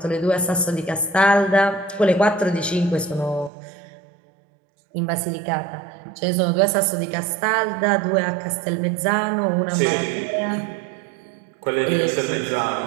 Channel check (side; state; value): left; drops out; at 3.5 s